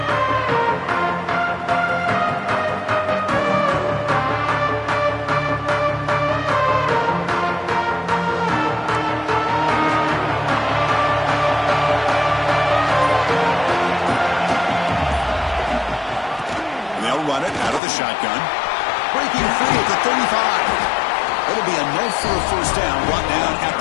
Shotgun. Breaking free at the 35. It'll be enough for a first down, brought down at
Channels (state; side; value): drops out; right; at 17.8 s